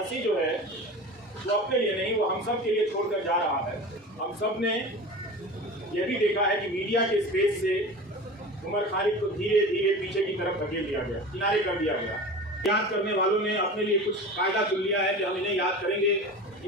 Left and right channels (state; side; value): normal; both; correlation 0.33